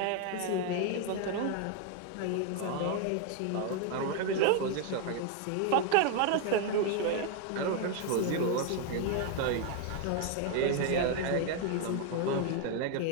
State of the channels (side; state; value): both; different; correlation 0.01